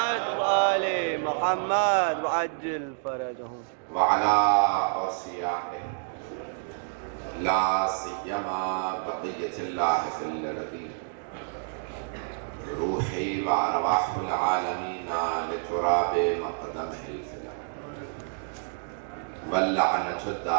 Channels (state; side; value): silent; left; digital silence